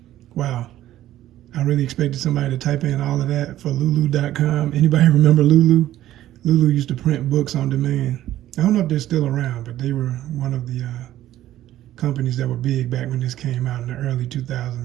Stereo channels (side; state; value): left; quieter; 13.5 dB